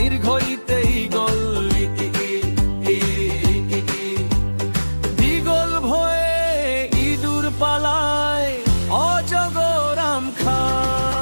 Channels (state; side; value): inverted; both; correlation -1.00